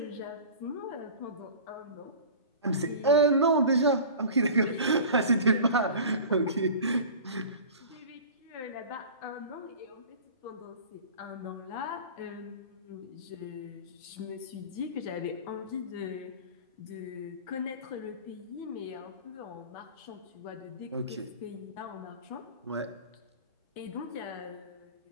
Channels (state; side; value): inverted; both; correlation -0.38